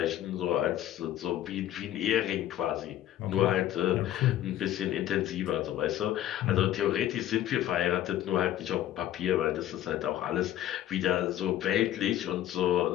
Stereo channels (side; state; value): right; quieter; 12.6 dB